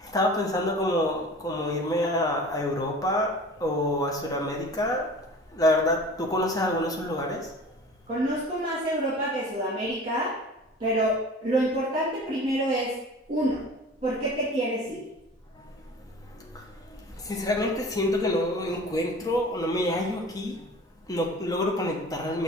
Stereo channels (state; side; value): normal; both; correlation 0.42